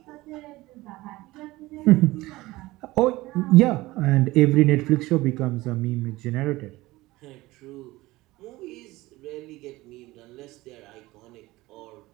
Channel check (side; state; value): left; quieter; 19.2 dB